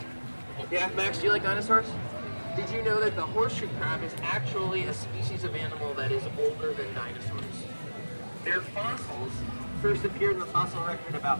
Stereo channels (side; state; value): both; inverted; correlation -1.00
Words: Yeah, Max, do you like dinosaurs? Did you know that the horseshoe crab is actually a species of animal that is older than dinosaurs? Their fossils first appeared in the fossil record